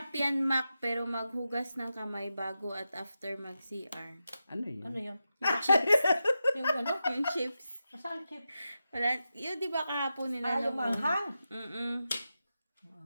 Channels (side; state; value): both; inverted; correlation -0.90